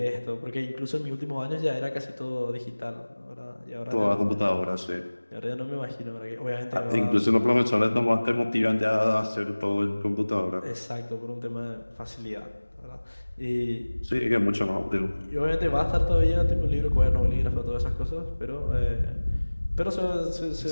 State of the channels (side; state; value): both; inverted; correlation -1.00